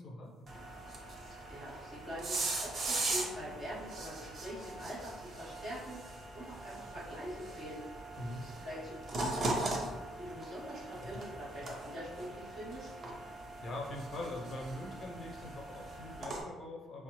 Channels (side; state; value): both; normal; correlation 0.71